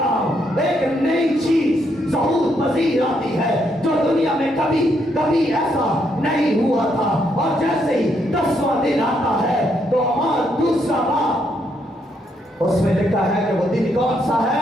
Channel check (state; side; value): normal; both; correlation 0.75